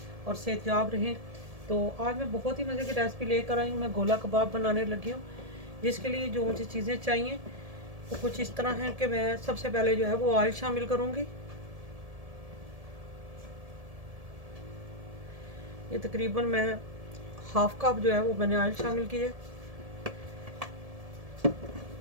और सेहतयाब रहें। तो आज मैं बहुत ही मज़े की रेसिपी लेकर आई हूँ। मैं गोला कबाब बनाने लगी हूँ, जिसके लिए जो मुझे चीज़ें चाहिए वो कुछ इस तरह हैं कि मैं सबसे पहले जो है वो ऑयल शामिल करूँगी। ये तकरीबन मैं हाफ कप जो है वो मैंने ऑयल शामिल की है।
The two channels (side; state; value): left; late; 1.7 ms